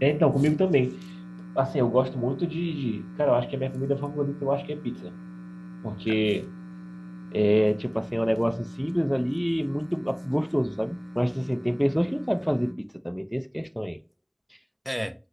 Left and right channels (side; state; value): both; identical; correlation 1.00